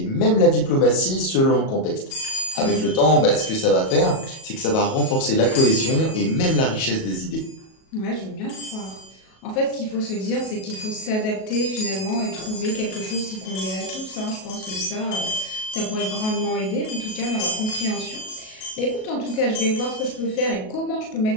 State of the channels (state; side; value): late; right; 37 ms